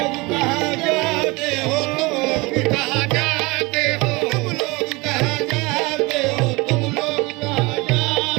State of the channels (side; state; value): left; quieter; 24.5 dB